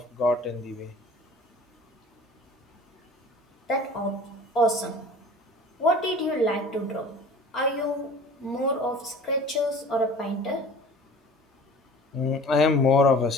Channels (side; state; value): both; normal; correlation 0.43